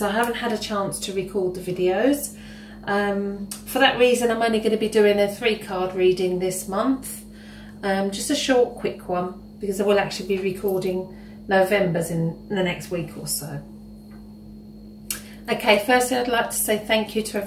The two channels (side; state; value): both; identical; correlation 1.00